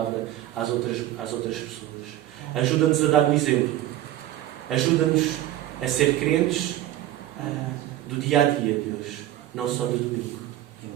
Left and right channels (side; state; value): left; quieter; 13.8 dB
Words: às outras pessoas. Ajuda-nos a dar o exemplo. Ajuda-nos a ser crentes do dia a dia, Deus, não só do domingo.